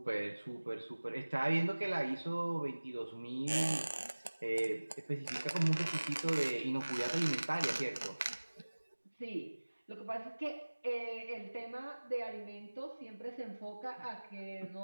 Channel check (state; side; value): inverted; both; correlation -1.00